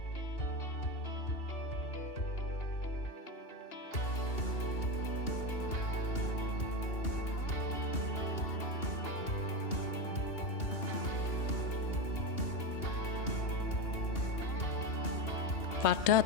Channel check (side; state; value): right; late; 2.8 ms